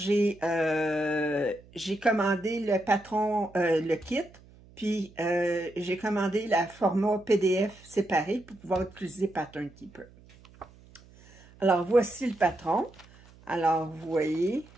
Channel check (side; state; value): right; noise; hum, 25 dB below the sound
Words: commandé le patron, le kit, puis j'ai commandé la format PDF séparé pour pouvoir utiliser Pattern Keeper. Alors, voici le patron. Alors, vous voyez.